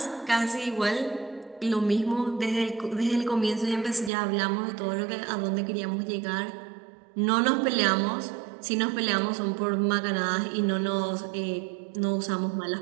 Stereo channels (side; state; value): left; drops out; at 4.1 s